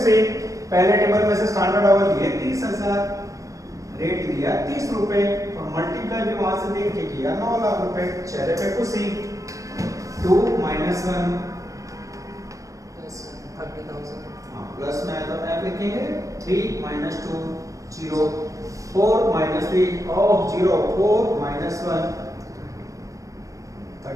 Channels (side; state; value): left; late; 0.16 ms